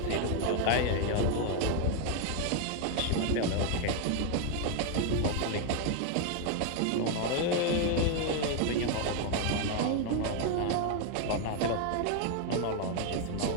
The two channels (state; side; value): different; both; correlation 0.01